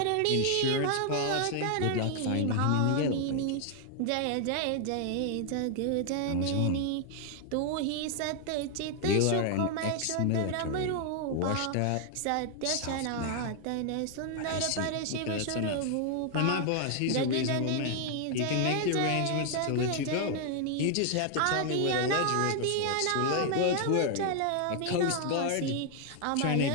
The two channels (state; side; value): different; both; correlation 0.00